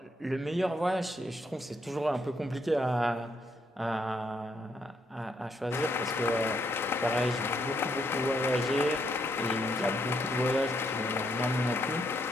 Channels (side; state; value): both; normal; correlation 0.75